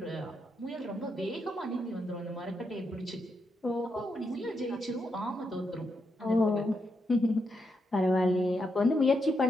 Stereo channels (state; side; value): normal; both; correlation 0.82